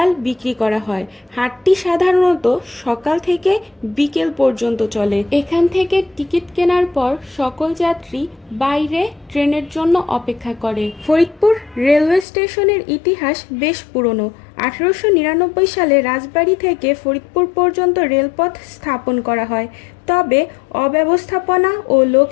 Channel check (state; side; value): drops out; right; at 12.2 s